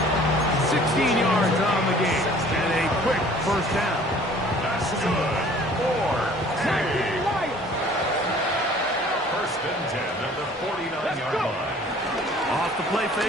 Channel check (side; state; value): both; normal; correlation 0.52